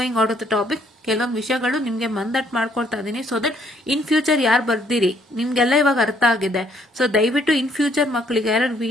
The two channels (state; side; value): normal; both; correlation 0.66